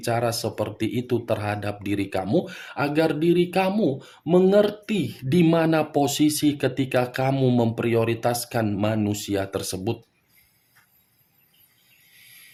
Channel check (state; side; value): identical; both; correlation 1.00